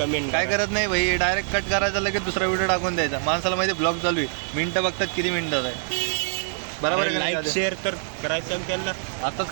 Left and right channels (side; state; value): left; silent; digital silence